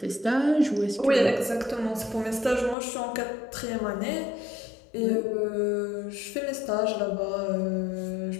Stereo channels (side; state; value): right; drops out; at 2.8 s